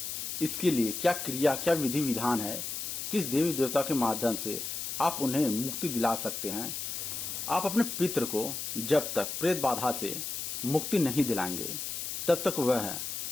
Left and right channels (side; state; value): left; noise; hiss, 4 dB below the sound